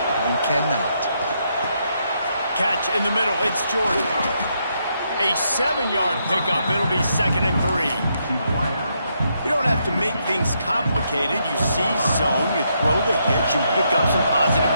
you cannot. Catch in the middle. It's Jordan. A 7-yard pickup. It'll be 2nd and 3. You don't have to make things complicated. You see zone, you throw the hitch, you pick up some positive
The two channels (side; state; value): both; inverted; correlation -0.78